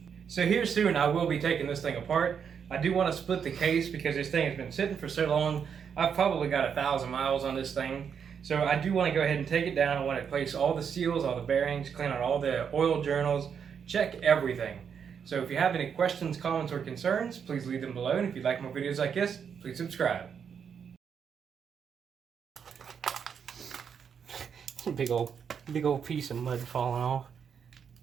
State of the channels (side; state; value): left; quieter; 7.2 dB